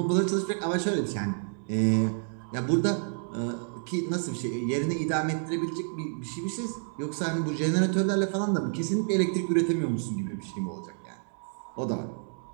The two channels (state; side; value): silent; left; 58 dB below the other